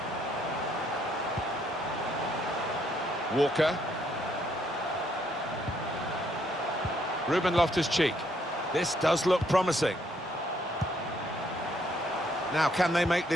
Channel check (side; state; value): both; normal; correlation 0.70